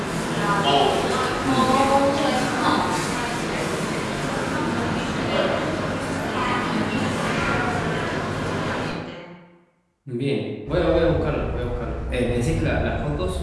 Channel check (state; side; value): identical; both; correlation 1.00